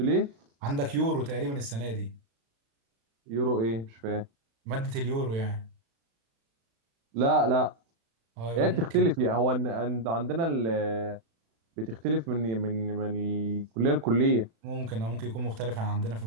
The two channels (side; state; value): left; late; 36 ms